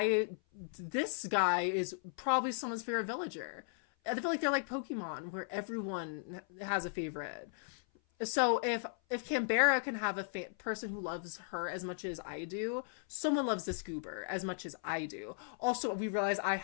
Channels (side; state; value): right; silent; 53 dB below the other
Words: this guy is probably someone's favorite villager. I feel like they're like Pokemon, where everyone has a favorite. So if Canberra can have a person who loves her as much as I do, someone loves this goober as much as I do. Also, we realize I